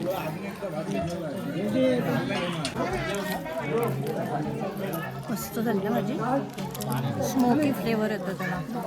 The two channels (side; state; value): both; identical; correlation 1.00